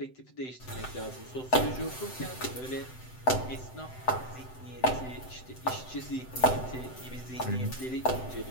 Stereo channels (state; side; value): late; right; 7.8 ms